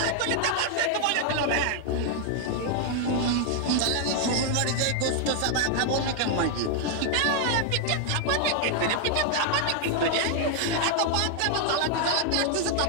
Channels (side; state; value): both; different; correlation 0.00